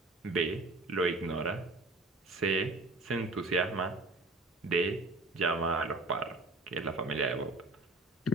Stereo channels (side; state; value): both; normal; correlation 0.44